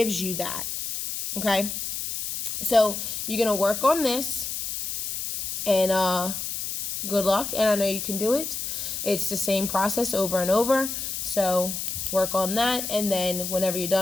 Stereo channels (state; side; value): noise; left; hiss, 4 dB below the sound